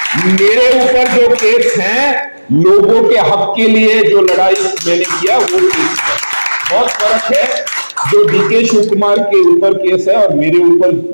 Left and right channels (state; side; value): inverted; both; correlation -1.00